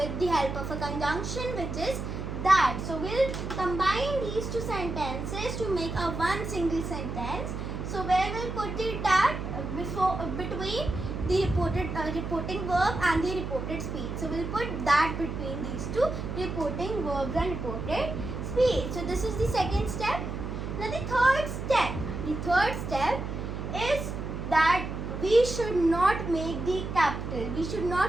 the help of a conjunction, which is that. So we'll combine these two sentences to make a one single sentence. So where we'll put the that between the reporting verb and the reported speech. So we'll put that between these two reporting verbs and reported speech. So this is the second step. Now the third step is that we should not make the capital. We should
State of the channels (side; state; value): right; noise; hum, 5 dB below the sound